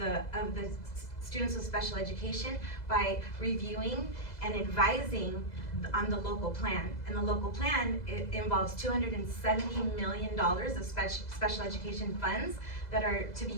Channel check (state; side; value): late; right; 2.0 ms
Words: students with special education by reviewing and advising on the local plan. And the local plan, it involves $270 million of special education funds that are to be